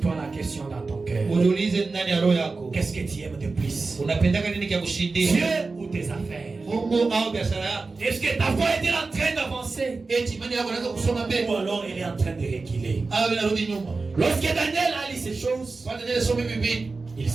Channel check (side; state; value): left; quieter; 3.9 dB